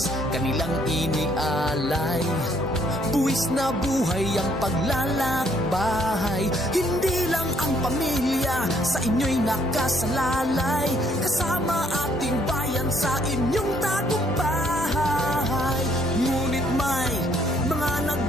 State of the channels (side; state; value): both; normal; correlation 0.67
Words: kanilang inialay, buwis na buhay ang paglalakbay. Hindi lang ang pamilya sa inyo'y nakasalalay, kasama ating bayan sa inyong tagumpay. Ngunit may mga